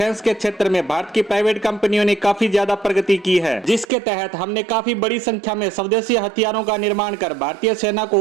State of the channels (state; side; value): drops out; left; at 3.9 s